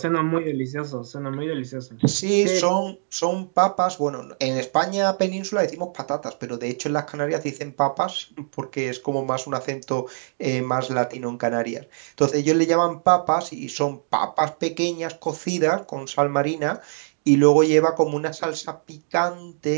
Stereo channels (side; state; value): left; silent; digital silence